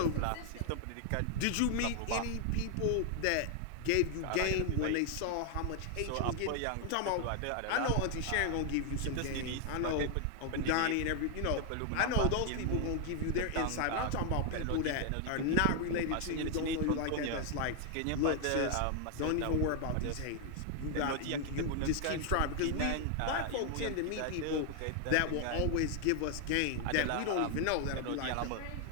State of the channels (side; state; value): both; different; correlation 0.00